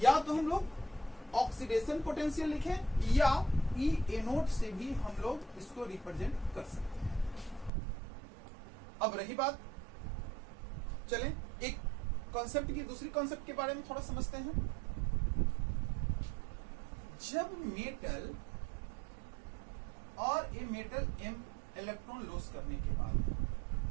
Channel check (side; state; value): left; drops out; at 7.7 s